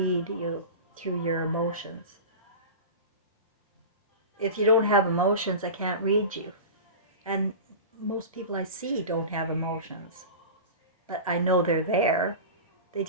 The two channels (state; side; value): inverted; both; correlation -0.30